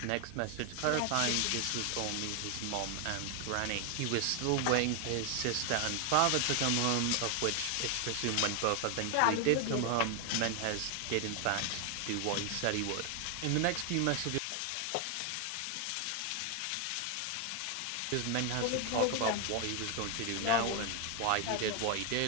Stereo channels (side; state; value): both; different; correlation 0.01